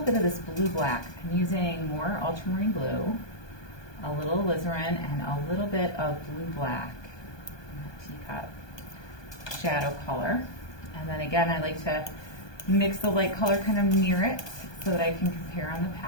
of this blue black. I'm using more ultramarine blue, a little alizarin, and a little bit of blue black in the teacup shadow color. And then again, I like to mix the light color kind of near it so that I can compare on the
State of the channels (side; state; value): right; late; 1.2 ms